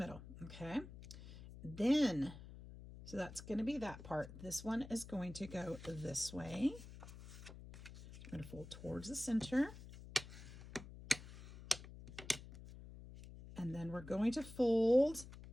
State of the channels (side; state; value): left; noise; hum, 14 dB below the sound